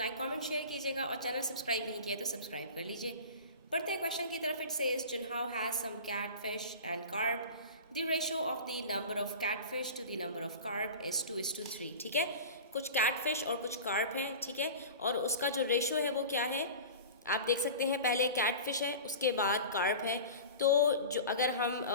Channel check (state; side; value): inverted; both; correlation -0.35